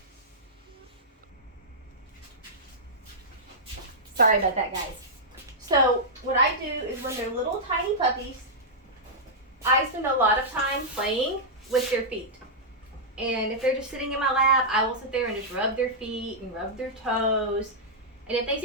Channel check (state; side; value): normal; both; correlation -0.10